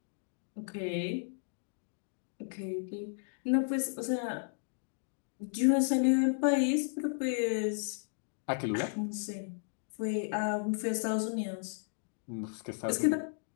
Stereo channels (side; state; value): right; silent; digital silence